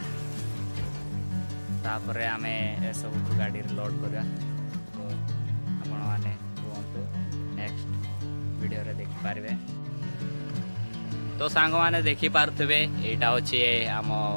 तापरे आमे ए सब गाड़ी लोड करा तो आपण माने नेक्स्ट वीडियो रे देखि पारबे। तो सांग माने देखि पारथबे एटा होची आम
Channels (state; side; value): inverted; both; correlation -1.00